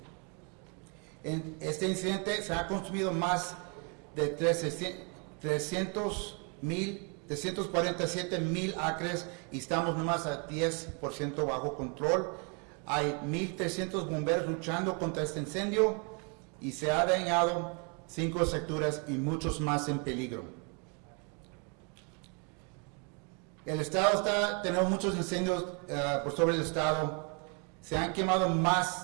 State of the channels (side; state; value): left; quieter; 35.7 dB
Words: En este incidente se ha consumido más de 347,000 acres y estamos nomás a 10% bajo control. Hay 1,300 bomberos luchando contra este incendio y se ha dañado 5 estructuras y muchos más en peligro. El estado tenemos muchos incendios por sobre el estado. Se han quemado